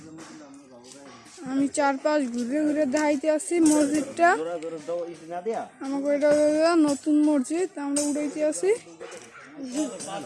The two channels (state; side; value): identical; both; correlation 1.00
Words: আমি চারপাশ ঘুরে ঘুরে দেখাইতে আসছি মসজিদটা। আমাকে এটা হলো নতুন মসজিদ, আমরা উড়াইতে আসি।